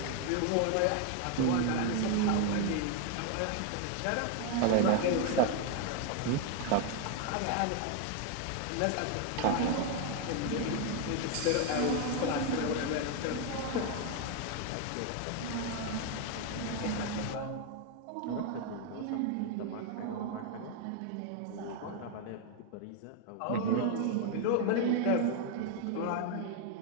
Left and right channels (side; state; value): both; different; correlation 0.01